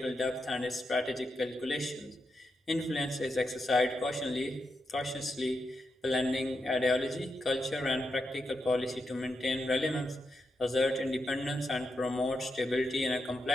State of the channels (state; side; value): normal; both; correlation 0.85